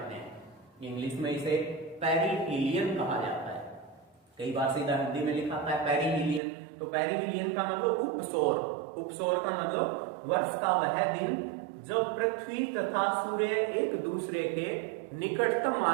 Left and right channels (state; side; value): drops out; left; at 6.4 s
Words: हैं। इंग्लिश में इसे पेरिहीलियन कहा जाता है। कई बार सीधा हिंदी में लिखा था पेरिहीलियन, तो पेरिहीलियन का मतलब उपसौर। उपसौर का मतलब वर्ष का वह दिन जब पृथ्वी तथा सूर्य एक दूसरे के निकटतम